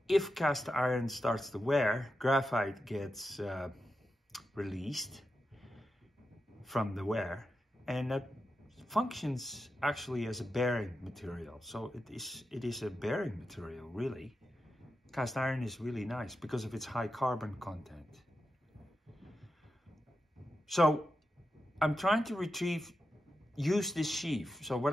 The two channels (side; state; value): both; normal; correlation 0.89